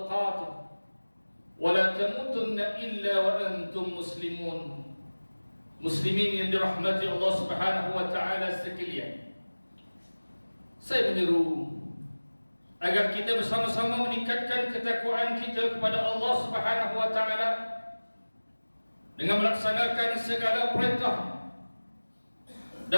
wa la tamutunna illa wa antum muslimun. Muslimin yang dirahmati Allah Subhanahu wa taala sekalian, saya menyeru agar kita bersama-sama meningkatkan ketakwaan kita kepada Allah Subhanahu wa taala dengan melaksanakan segala perintah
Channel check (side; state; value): both; inverted; correlation -1.00